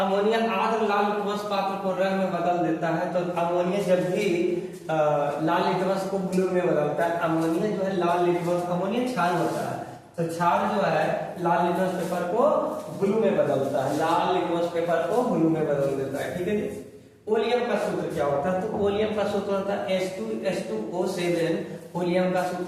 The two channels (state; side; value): identical; both; correlation 1.00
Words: लाल लिटमस पात्र को रंग में बदल देता है। तो अमोनिया जब भी लाल लिटमस को ब्लू में बदलता है, अमोनिया जो है लाल लिटमस, अमोनिया क्षार होता है, तो क्षार जो है लाल लिटमस पेपर को ब्लू में बदलता है, लाल लिटमस पेपर को ब्लू में बदल देता है। ठीक है जी। ओलियम का सूत्र क्या होता है? तो ओलियम का सूत्र होता है H2SO7 ओलियम का